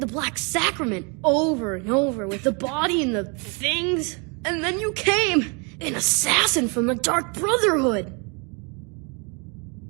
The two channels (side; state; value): left; quieter; 33.2 dB